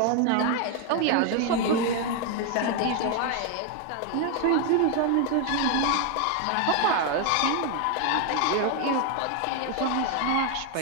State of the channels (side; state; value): both; different; correlation 0.01